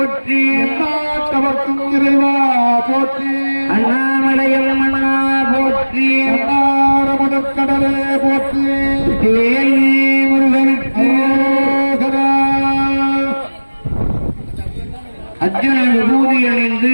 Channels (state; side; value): inverted; both; correlation -1.00